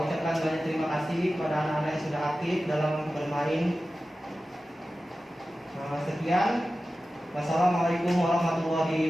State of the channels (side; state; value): both; normal; correlation 0.95